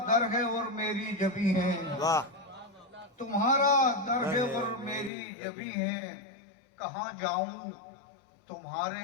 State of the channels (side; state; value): right; drops out; at 5.1 s